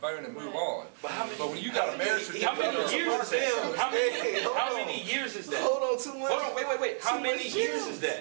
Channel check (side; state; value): left; silent; digital silence